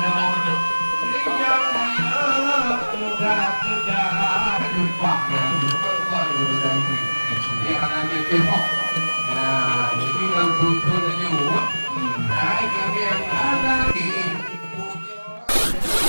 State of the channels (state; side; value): inverted; both; correlation -1.00